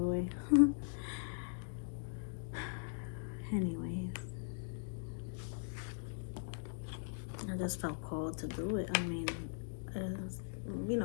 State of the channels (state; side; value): silent; right; digital silence